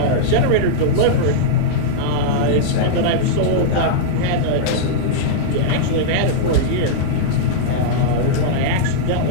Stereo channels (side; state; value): both; different; correlation -0.03